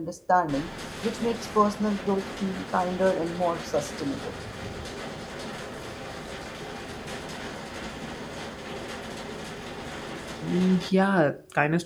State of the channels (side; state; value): both; identical; correlation 1.00